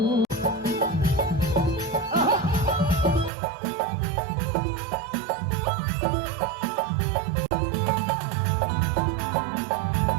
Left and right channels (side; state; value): left; drops out; at 3.3 s